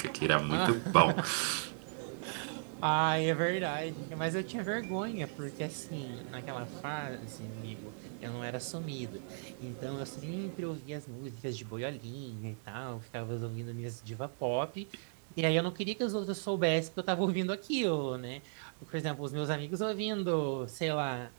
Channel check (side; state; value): left; silent; digital silence